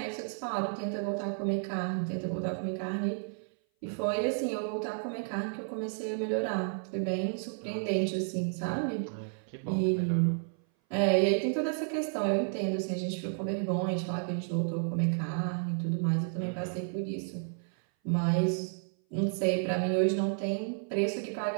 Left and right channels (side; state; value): left; silent; 57 dB below the other